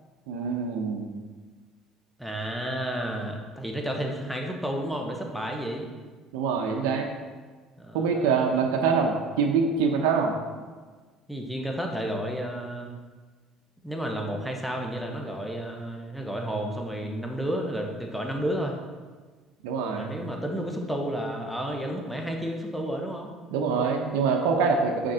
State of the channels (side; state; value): left; quieter; 3.3 dB